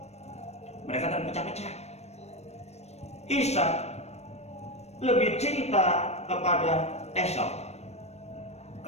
terpecah-pecah. Ishak lebih cinta kepada Esau,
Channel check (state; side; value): late; right; 0.31 ms